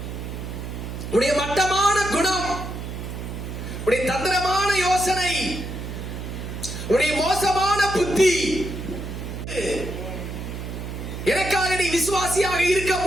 உடைய மட்டமான குணம், உடைய தந்திரமான யோசனை, உடைய மோசமான புத்தி, எனக்காக நீ விசுவாசியாக இருக்க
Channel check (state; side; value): noise; right; hum, 7 dB below the sound